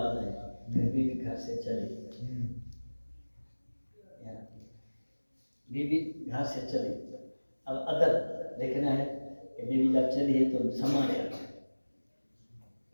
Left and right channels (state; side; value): inverted; both; correlation -1.00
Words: ہیں، پھر بیوی گھر سے چلی، بیوی گھر سے چلی، اب ادب دیکھنا ہے کہ بیوی جب چلی ہے تو سما گیا،